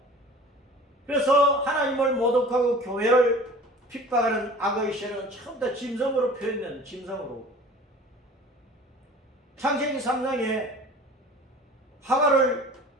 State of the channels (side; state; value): both; normal; correlation 0.43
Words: 그래서 하나님을 모독하고 교회를 핍박하는 악의 세력은 처음부터 짐승으로 표현되는 짐승으로. 창세기 3장에 하가를